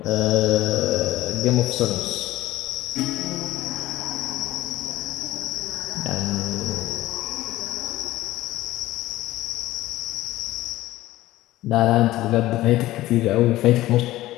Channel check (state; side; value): quieter; right; 16.3 dB